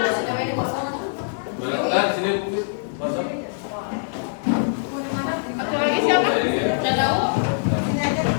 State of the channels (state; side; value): silent; right; digital silence